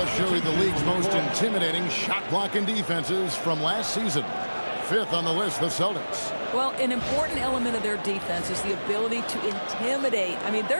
show you the league's most intimidating shot-blocking defenses from last season. 5th on the list, the Celtics. Well, an important element of their defense is the ability to intimidate. I mean,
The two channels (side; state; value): both; inverted; correlation -1.00